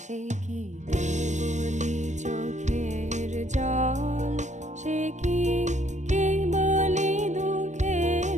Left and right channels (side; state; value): left; late; 0.34 ms